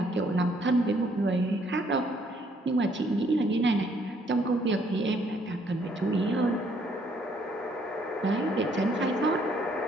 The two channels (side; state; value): both; normal; correlation 0.67